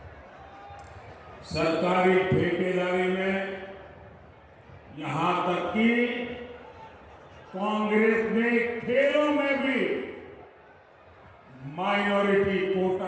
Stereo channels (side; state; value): both; identical; correlation 1.00